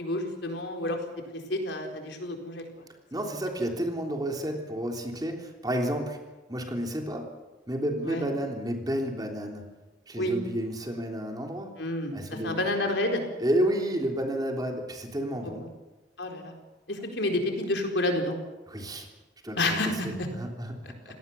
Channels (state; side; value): normal; both; correlation 0.49